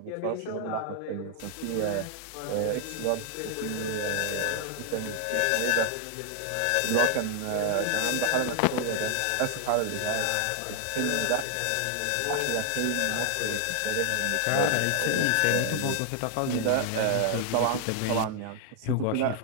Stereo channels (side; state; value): both; different; correlation 0.00